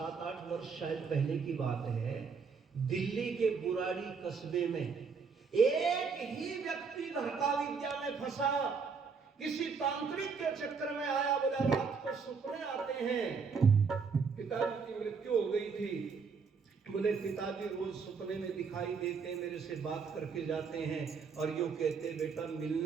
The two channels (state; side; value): quieter; left; 5.4 dB